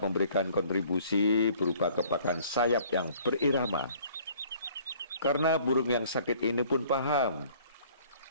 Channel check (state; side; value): inverted; both; correlation -0.55